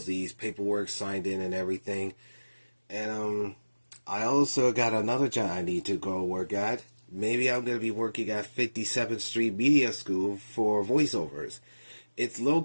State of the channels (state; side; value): inverted; both; correlation -1.00